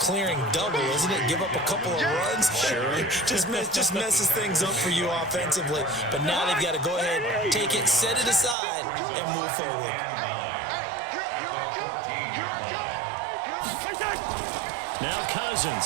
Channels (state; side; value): drops out; left; at 8.6 s